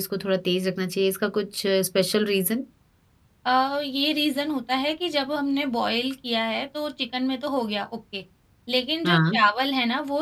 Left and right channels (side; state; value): both; identical; correlation 1.00